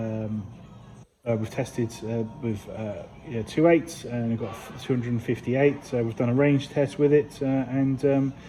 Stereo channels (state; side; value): identical; both; correlation 1.00